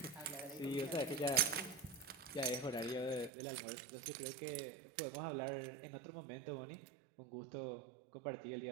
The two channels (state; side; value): drops out; left; at 3.3 s